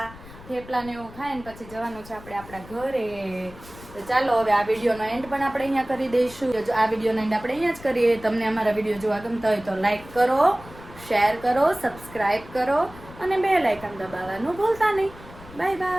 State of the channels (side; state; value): left; noise; rumble, 18 dB below the sound